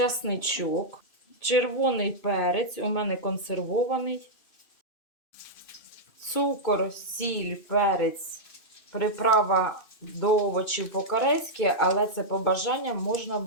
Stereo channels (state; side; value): late; right; 2.6 ms